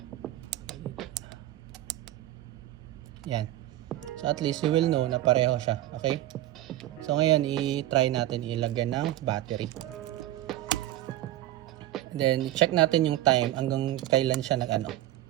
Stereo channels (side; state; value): left; quieter; 14.4 dB